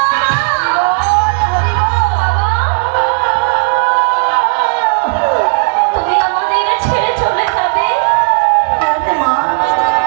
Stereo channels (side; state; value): left; silent; digital silence